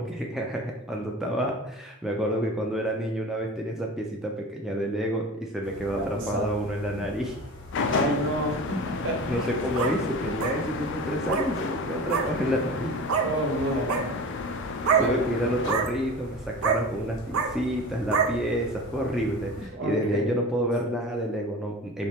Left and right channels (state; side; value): normal; both; correlation 0.34